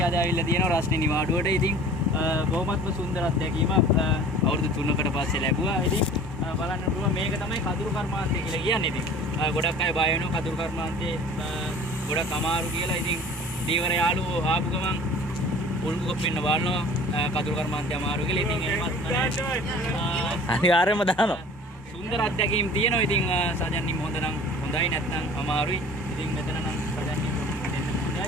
අද ආවිල්ලා තියෙනවා රස්නේ නිවාඩුවට. ඉතින් බොහොමත්ම සුන්දර අත්දැකීමක් අවුරුදු 3කට පස්සේ ලැබුවා. ඉතින් බලන්න පුළුවන් මේක තමයි කඳුරු කර්මාන්තය කියලා කියන්නේ. ඉතින් ගොඩක් අය බය වෙනවා කඳුරු කර්මාන්තේ ගොඩක් අමාරු කියලා. ඉතින් දීවර යාළුවෝ ආපු ගමන් උල්ගු කොප්පෙන්න බලනවා කඳුරු කර්මාන්තය අමාරු කියලා. ඉතින් එහෙමත් අනිවාර්යයෙන්ම දානවා. සුන්දර අත්දැකීම් තියෙනවා. ඉතින් සජන්නිම හොඳ නම් හොඳයි නැත්නම් අමාරුයි. ඉතින් මෙතන නම් සජන්නිම දෙන්න හොඳයි.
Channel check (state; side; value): normal; both; correlation 0.45